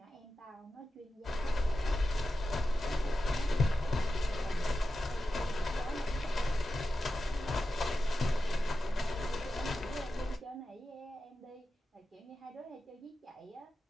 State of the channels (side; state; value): both; normal; correlation 0.92